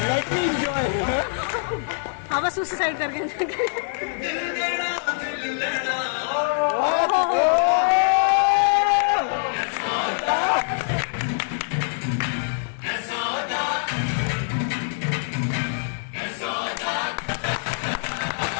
हाँ बस उसी साइड करके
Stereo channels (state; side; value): silent; right; 57 dB below the other